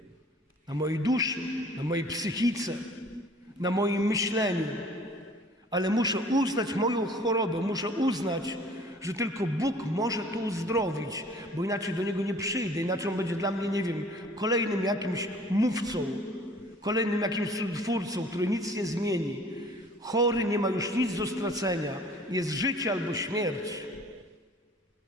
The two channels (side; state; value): both; normal; correlation 0.51